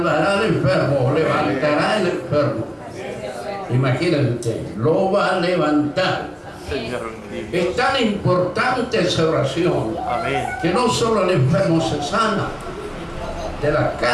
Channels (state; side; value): identical; both; correlation 1.00